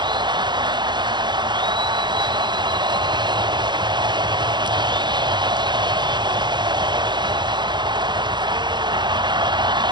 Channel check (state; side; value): late; left; 0.21 ms